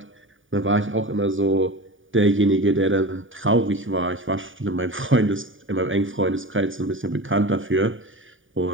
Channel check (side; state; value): left; late; 0.57 ms